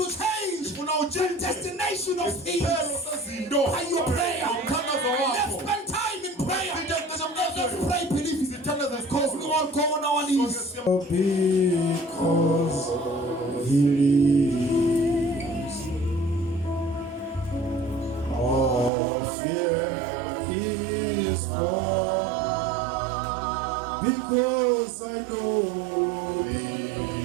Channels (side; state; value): left; drops out; at 18.9 s